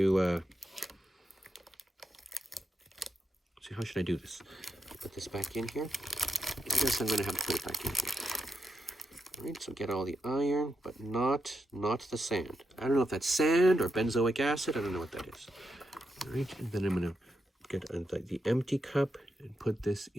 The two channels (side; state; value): both; normal; correlation 0.86